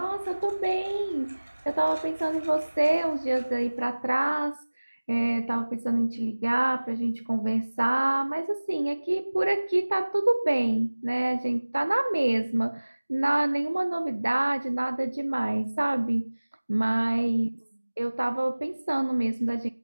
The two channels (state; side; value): inverted; both; correlation -1.00